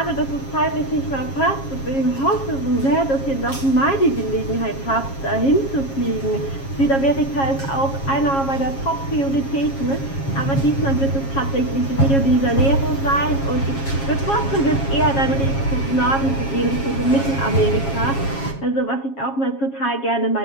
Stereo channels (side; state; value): right; late; 7.3 ms